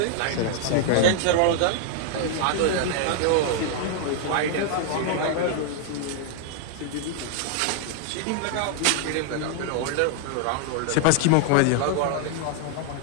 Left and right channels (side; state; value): both; different; correlation 0.00